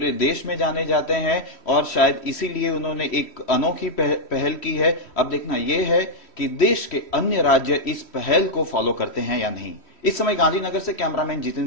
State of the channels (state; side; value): late; right; 3.1 ms